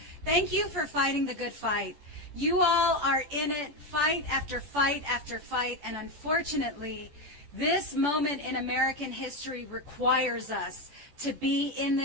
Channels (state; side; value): late; left; 14 ms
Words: thank you for fighting the good fight. You all are in it, fight after fight after fight. And unfortunately, this moment in American history requires us to be in